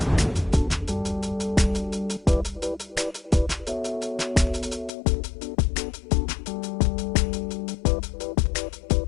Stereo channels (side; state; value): right; drops out; at 4.9 s